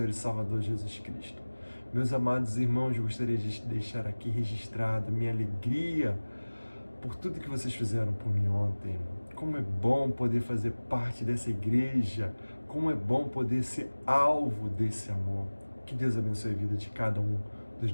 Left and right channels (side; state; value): both; inverted; correlation -1.00